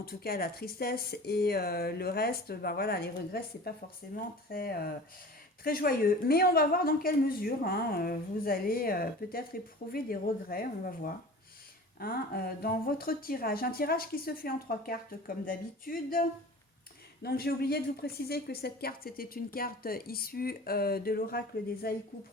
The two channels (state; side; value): normal; both; correlation 0.39